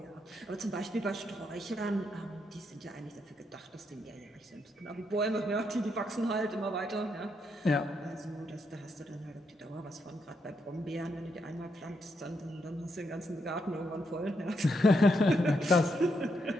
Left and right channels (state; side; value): normal; both; correlation 0.79